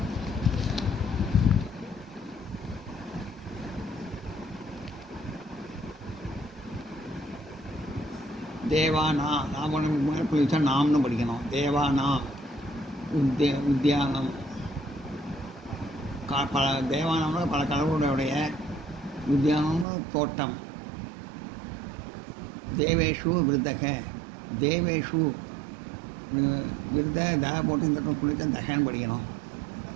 தேவானா நாம் மேலே புள்ளி வச்சா நாம்னு படிக்கணும். தேவானா உத்தியானம் பல தேவானம்னா பல கடவுளுடைய உத்தியானம்னு தோட்டம். தேவேஷு விருத்தக தேவேஷு விருத தக போட்டு இந்த புள்ளித்த தகன்னு படிக்கணும்.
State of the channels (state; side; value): drops out; left; at 19.9 s